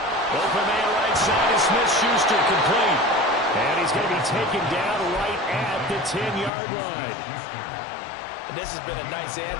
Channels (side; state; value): right; drops out; at 6.5 s